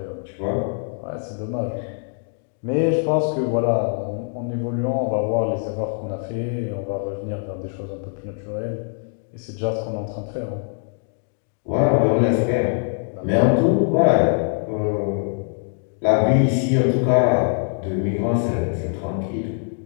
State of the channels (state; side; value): silent; right; 63 dB below the other